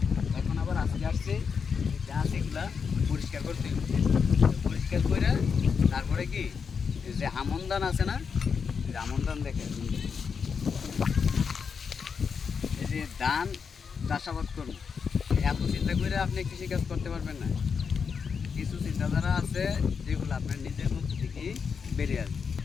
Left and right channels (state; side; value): quieter; right; 6.0 dB